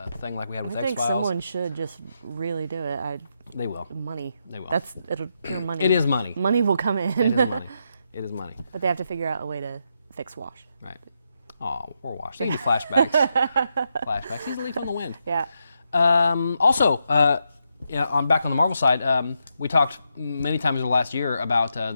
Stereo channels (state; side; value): inverted; both; correlation -0.82